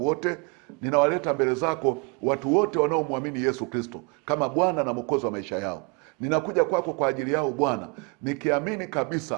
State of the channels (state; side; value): quieter; left; 32.3 dB